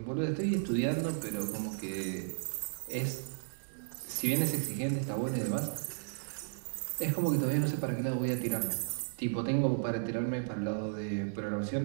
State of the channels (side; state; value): left; silent; digital silence